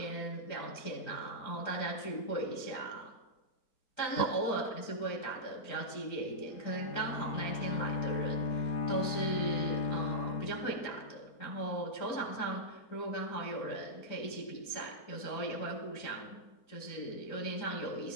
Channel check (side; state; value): right; late; 4.4 ms